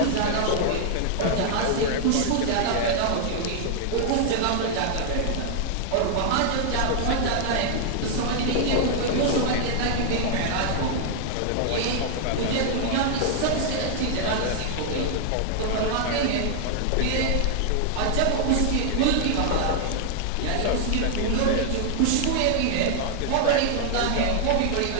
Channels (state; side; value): different; both; correlation 0.00